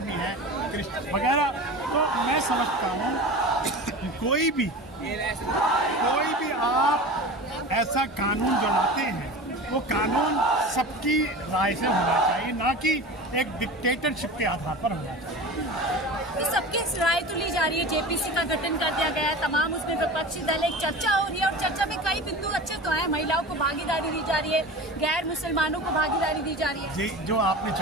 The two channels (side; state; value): both; normal; correlation 0.33